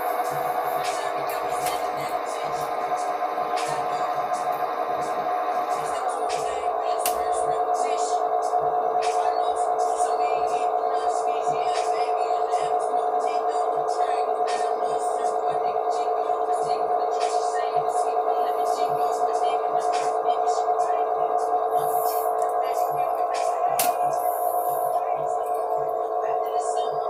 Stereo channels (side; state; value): both; identical; correlation 1.00